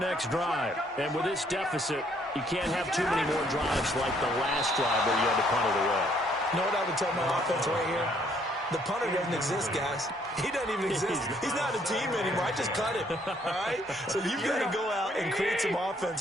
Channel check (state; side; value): normal; both; correlation 0.66